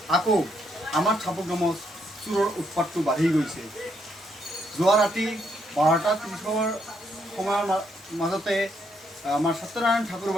আকৌ আমাৰ চাপৰগামত চোৰৰ উৎপাতটো বাঢ়ি গৈছে। যোৱা ৰাতি 12:30 সময়ৰ মাজতে আমাৰ সত্যনাৰায়ণ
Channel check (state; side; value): normal; both; correlation 0.75